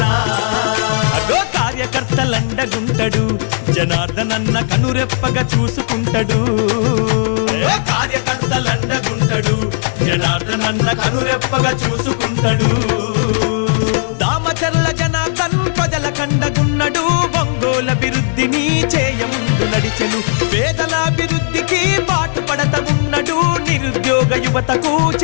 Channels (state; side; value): silent; right; digital silence